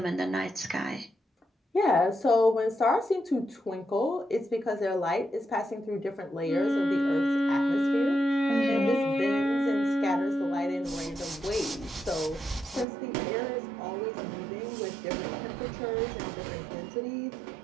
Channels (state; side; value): drops out; left; at 12.9 s